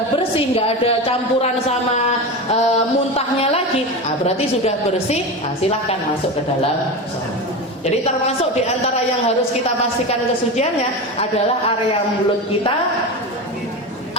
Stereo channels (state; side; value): normal; both; correlation 0.23